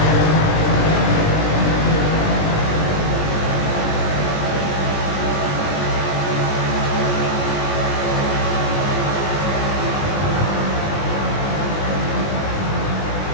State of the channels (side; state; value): right; late; 20 ms